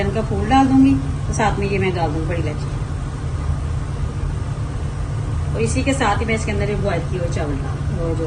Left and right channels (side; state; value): both; identical; correlation 1.00